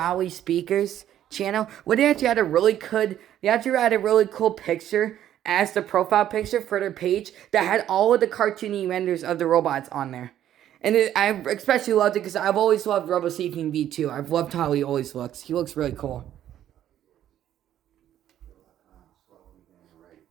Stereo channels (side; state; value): left; quieter; 11.4 dB